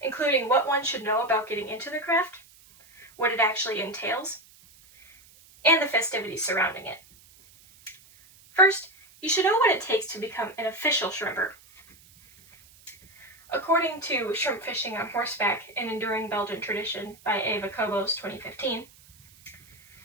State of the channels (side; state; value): right; noise; hiss, 26 dB below the sound